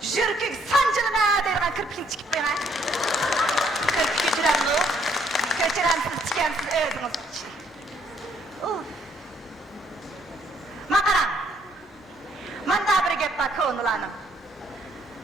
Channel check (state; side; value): normal; both; correlation 0.67